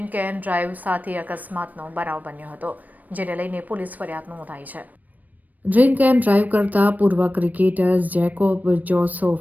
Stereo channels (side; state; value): left; late; 0.081 ms